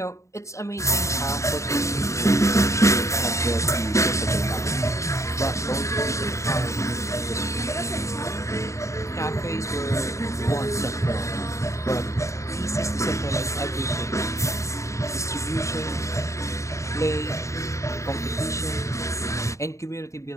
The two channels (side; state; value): right; late; 0.14 ms